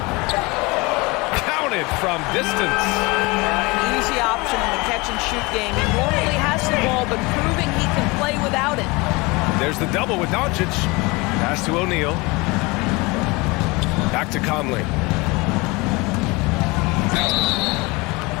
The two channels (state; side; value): quieter; right; 25.1 dB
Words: Counted from distance. An easy option in the catch-and-shoot game. He normally has the ball, but proving he can play without it. There's the double with Doncic. Pass to O'Neal. Back to Conley.